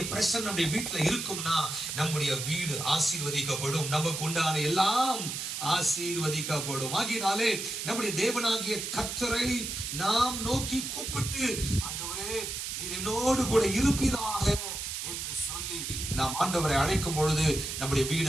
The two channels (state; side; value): noise; right; hiss, 5 dB below the sound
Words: பிரசன்னம் நம்முடைய வீட்டுல இருக்கும்னா நம்முடைய வீடு ஆசீர்வதிக்கப்படும், நமக்கு உண்டான எல்லாம் ஆசீர்வதிக்கப்படும். ஆகினாலே நம்முடைய தேவனாகிய கர்த்தரை நாம் நோக்கி கூப்பிட்டு, ஆண்டவரே நீர் என்னோடு கூட இருப்பீராக என்று சொல்லி நாம் ஆண்டவரை அழைக்கும் பொழுது நம்முடைய